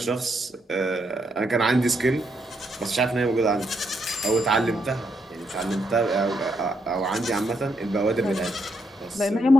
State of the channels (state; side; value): normal; both; correlation 0.78